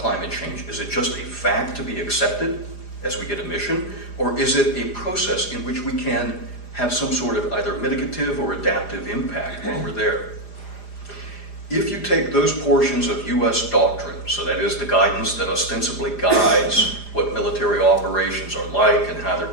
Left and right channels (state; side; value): late; right; 4.9 ms